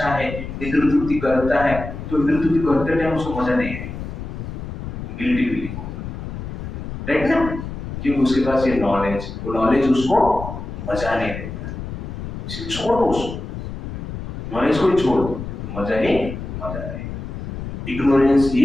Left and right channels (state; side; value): noise; left; rumble, 8 dB below the sound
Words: है, इंद्रिय तृप्ति करता है, तो इंद्रिय तृप्ति करते टाइम उसको मजा नहीं है। गिल्टी फीलिंग होगा, राइट ना? क्योंकि उसके पास ये नॉलेज, वो नॉलेज उसको मजा नहीं देता। छोड़ दो उसको, नॉलेज को ही छोड़ दो तो मजा ही मजा रहेगा। इग्नोरेंस